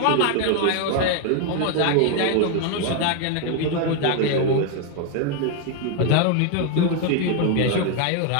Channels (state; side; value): different; both; correlation 0.01